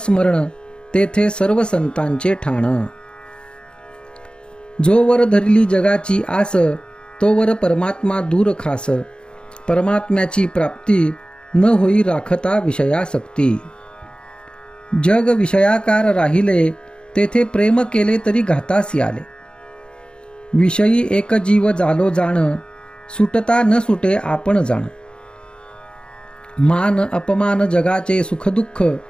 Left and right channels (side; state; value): right; late; 0.052 ms